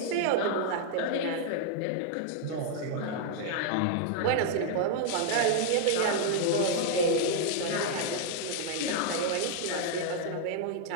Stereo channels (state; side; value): different; both; correlation 0.00